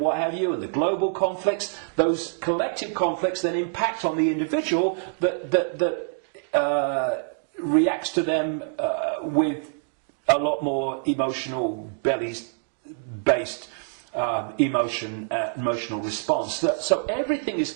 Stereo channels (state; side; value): silent; left; digital silence